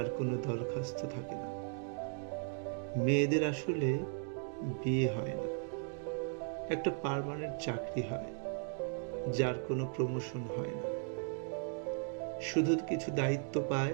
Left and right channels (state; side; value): silent; left; 53 dB below the other